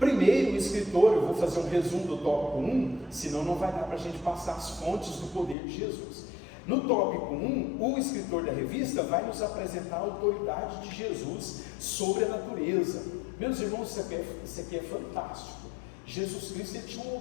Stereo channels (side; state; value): right; drops out; at 5.6 s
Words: o escritor, eu vou fazer um resumo do tópico 1, senão não vai dar para a gente passar as fontes do poder de Jesus. No tópico 1, o escritor da revista vai nos apresentar a autoridade de Jesus sobre a natureza. Meus irmãos, isso aqui é fantástico. Jesus Cristo ele tinha uma